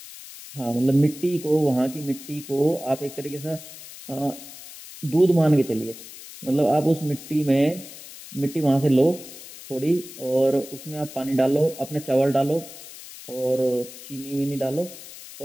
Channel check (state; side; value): noise; left; hiss, 15 dB below the sound